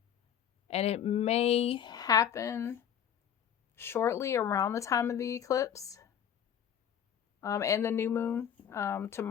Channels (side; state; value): right; quieter; 9.0 dB